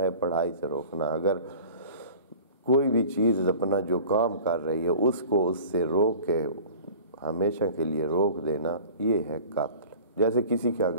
ہے پڑھائی سے روکنا، اگر کوئی بھی چیز اپنا جو کام کر رہی ہے اس کو اس سے روک کے ہمیشہ کے لیے روک دینا، یہ ہے قاتل۔ جیسے کسی کا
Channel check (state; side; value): inverted; both; correlation -0.42